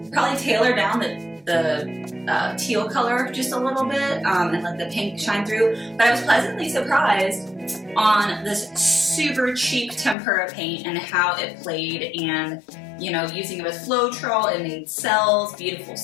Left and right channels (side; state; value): right; drops out; at 10.2 s